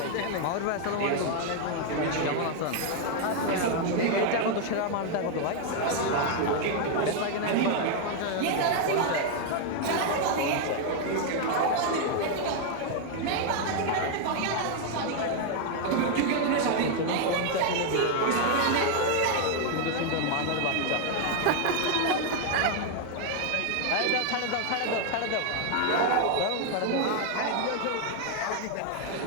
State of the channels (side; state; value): both; different; correlation 0.00